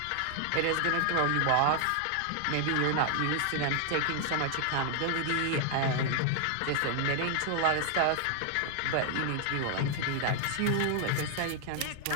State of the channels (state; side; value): different; both; correlation 0.00